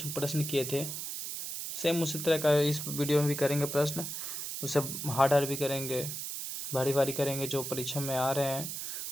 प्रश्न किए थे। सेम उसी तरह का इस वीडियो में भी करेंगे प्रश्न। उसे हार्ड भी करेंगे, भारी करेंगे, जो परीक्षा में आ रहे हैं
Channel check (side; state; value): right; noise; hiss, 5 dB below the sound